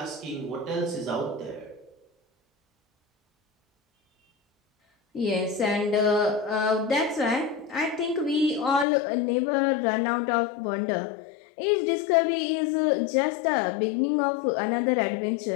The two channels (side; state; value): right; drops out; at 8.8 s